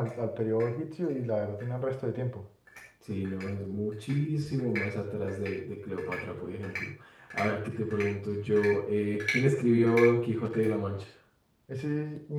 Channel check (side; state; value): both; identical; correlation 1.00